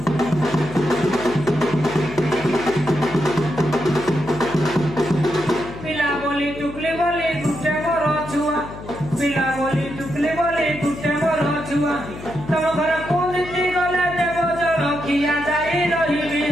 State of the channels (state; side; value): noise; left; hum, 13 dB below the sound